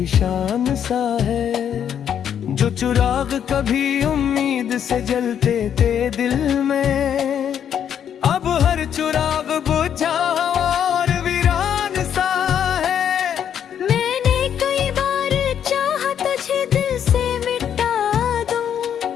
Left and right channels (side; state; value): right; quieter; 9.0 dB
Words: सा है। जो चिराग कभी उम्मीद से जलते थे दिल में, अब हर चिराग बुझा और वीरान सा है। मैंने कई बार चाहा तुझे दिल से मिटा दूं,